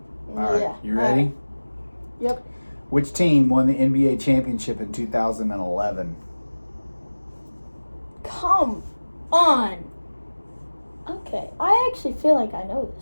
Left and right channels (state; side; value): inverted; both; correlation -1.00